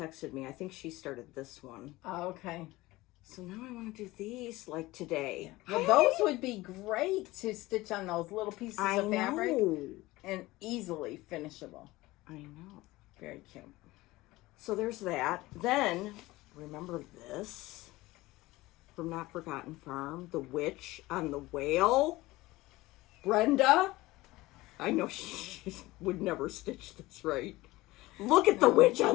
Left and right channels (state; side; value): quieter; right; 19.2 dB